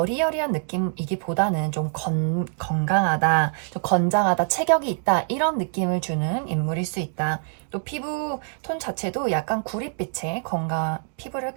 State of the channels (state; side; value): silent; left; 62 dB below the other